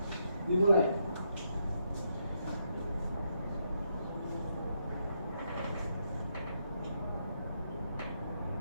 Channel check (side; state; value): both; inverted; correlation -0.79